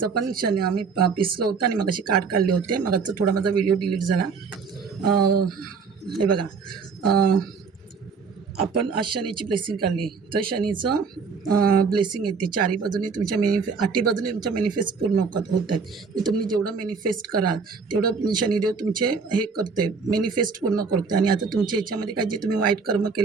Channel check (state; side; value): quieter; left; 5.2 dB